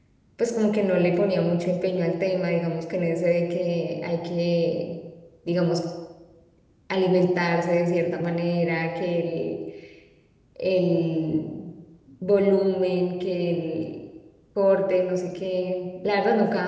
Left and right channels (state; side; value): identical; both; correlation 1.00